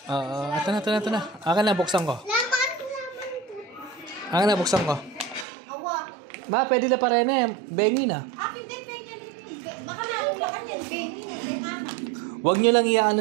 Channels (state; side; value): drops out; left; at 5.5 s